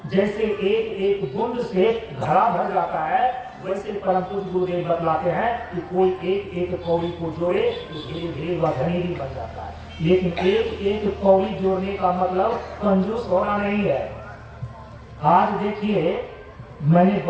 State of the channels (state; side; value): identical; both; correlation 1.00